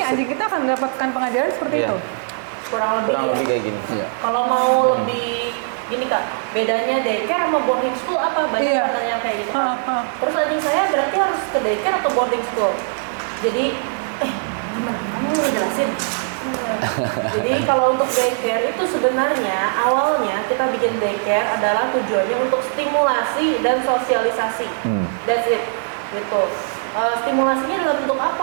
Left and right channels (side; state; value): left; silent; digital silence